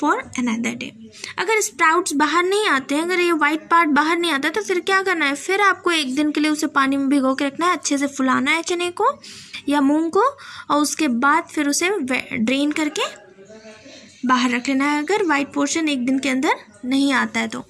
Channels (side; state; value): both; identical; correlation 1.00